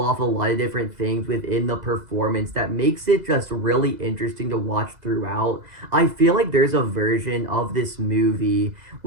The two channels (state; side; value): late; left; 2.0 ms